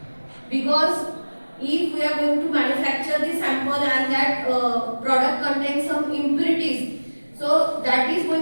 Because if we are going to manufacture the sample and that product contains some impurities, so that is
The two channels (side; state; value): both; inverted; correlation -1.00